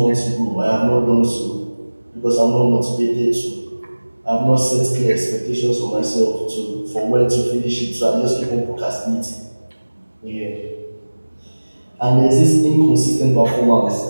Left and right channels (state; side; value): inverted; both; correlation -1.00